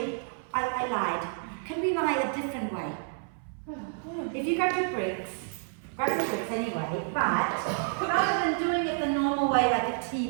I lied. Can we lie a different way? If you grab your bricks anyway, but rather than doing it the normal way like a T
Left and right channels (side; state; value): left; silent; 58 dB below the other